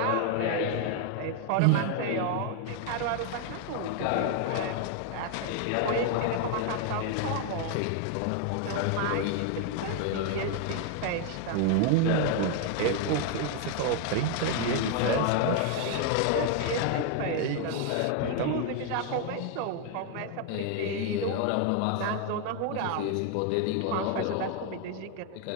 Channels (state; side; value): different; both; correlation 0.01